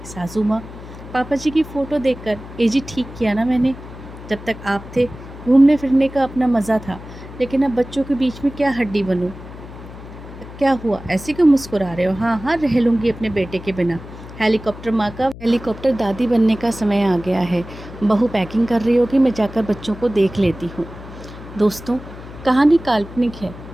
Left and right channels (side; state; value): left; noise; hum, 15 dB below the sound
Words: सासू माँ पापा जी की फ़ोटो देखकर, ए जी ठीक किया ना मैंने, जब तक आप थे घूमने फिरने का अपना मज़ा था, लेकिन अब बच्चों के बीच में क्या हड्डी बनूँ। क्या हुआ, ऐसे क्यों मुस्कुरा रहे हो। हाँ हाँ रह लूँगी अपने बेटे के बिना। हेलीकॉप्टर माँ का हेलीकॉप्टर दादी बनने का समय आ गया है। बहू पैकिंग कर रही होगी, मैं जाकर बच्चों को देख लेती हूँ। दोस्तों, कहानी काल्पनिक है।